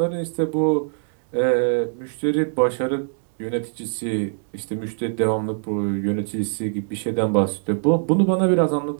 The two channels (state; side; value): silent; left; 64 dB below the other